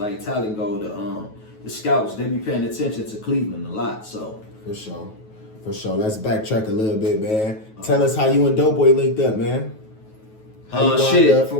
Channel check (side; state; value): right; late; 9.3 ms